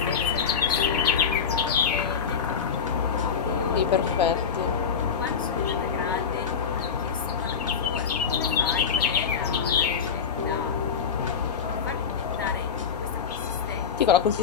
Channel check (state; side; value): quieter; right; 6.6 dB